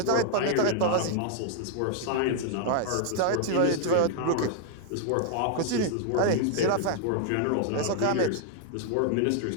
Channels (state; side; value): different; both; correlation -0.01